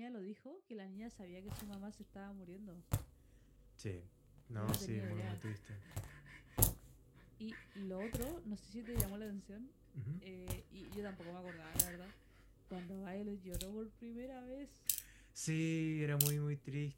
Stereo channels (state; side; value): identical; both; correlation 1.00